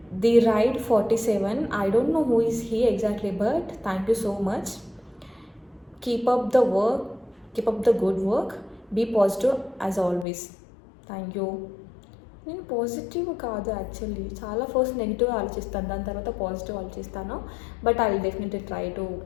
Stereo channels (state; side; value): drops out; right; at 10.2 s